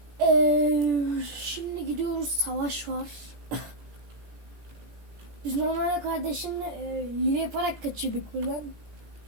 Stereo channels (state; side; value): late; left; 17 ms